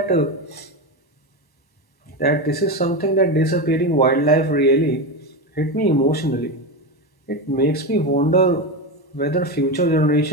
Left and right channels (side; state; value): right; late; 1.0 ms